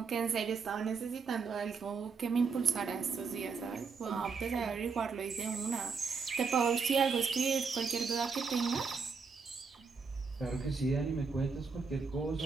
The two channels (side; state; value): left; quieter; 5.2 dB